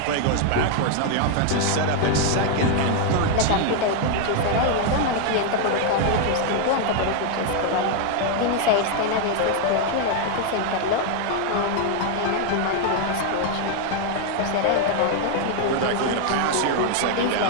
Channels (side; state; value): both; different; correlation 0.00